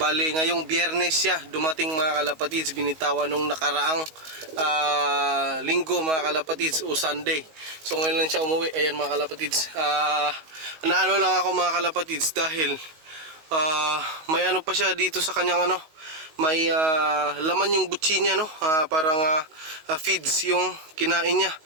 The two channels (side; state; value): left; late; 19 ms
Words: ngayong Biyernes siya dumating mga kalapatids, binitawan nung nakaraang linggo mga kalapatids o Sunday. So ngayon lang siya umuwi. Ayan mga kalapatids. Naano lang ako mga kalapatids dahil may ano pa siya dito sa kanyang ano, may laman yung butsi niya no. Parang feeds yung kinain niya.